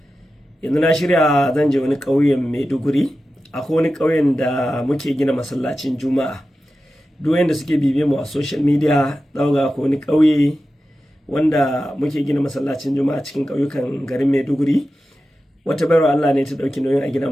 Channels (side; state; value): both; normal; correlation 0.93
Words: Yanzu na shirya zan je wani ƙauyen Maiduguri. Akwai wani ƙauyen da muke gina masallacin Juma'a. Duk wanda suke bibiye mu a social media za ga akwai wani ƙauye wanda muke gina masallacin Juma'a cikin ƙauyukan garin Maiduguri. Wata bayarwa Allah ne ta ɗauki nauyin a gina